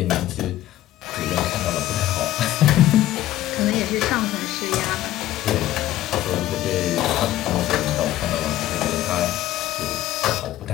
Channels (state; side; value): quieter; right; 14.1 dB